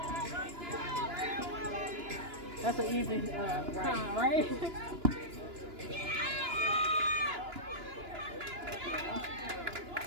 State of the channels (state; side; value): late; left; 2.9 ms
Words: That's an easy time, right?